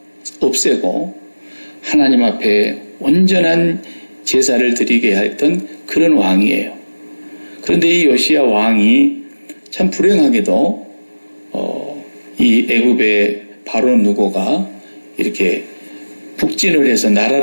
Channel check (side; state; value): both; inverted; correlation -1.00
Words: 없애고 하나님 앞에 온전한 제사를 드리게 했던 그런 왕이에요. 그런데 이 요시야 왕이 참 불행하게도 이 애굽의 바로 누고가 이렇게 북진을 해서